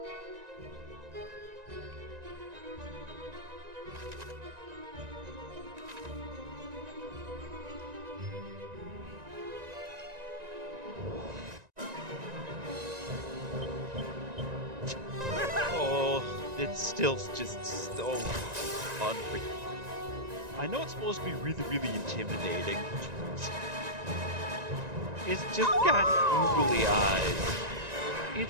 It's still just so unreal. I know it's supposed to be really, really intimidating. It's just got googly eyes.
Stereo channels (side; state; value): left; late; 1.9 ms